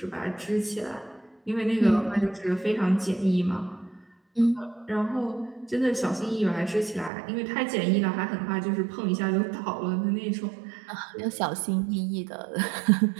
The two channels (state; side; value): drops out; left; at 7.1 s